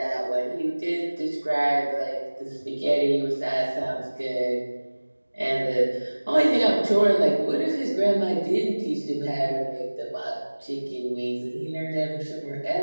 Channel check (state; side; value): inverted; both; correlation -1.00